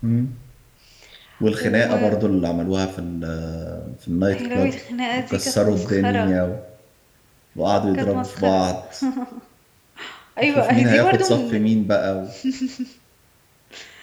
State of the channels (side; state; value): both; identical; correlation 1.00